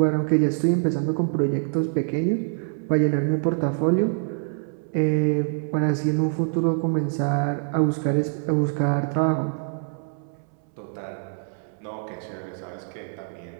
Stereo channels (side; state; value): left; silent; 62 dB below the other